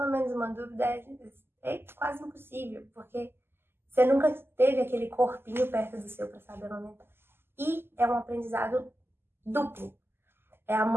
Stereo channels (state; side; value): late; left; 0.11 ms